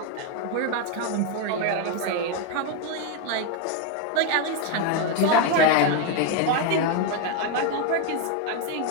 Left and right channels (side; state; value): both; different; correlation 0.02